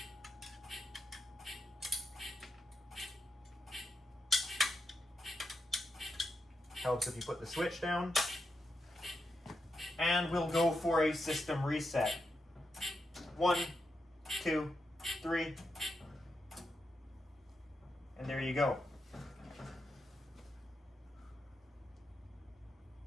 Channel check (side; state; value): both; normal; correlation 0.85